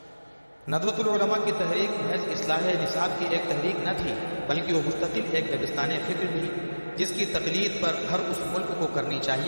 ندوۃ العلماء کی تحریک محض اصلاح نصاب کی ایک تحریک نہ تھی، بلکہ وہ مستقل ایک دبستان فکر بھی، جس کی تقلید پر ہر اس ملک کو کرنی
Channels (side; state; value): both; inverted; correlation -1.00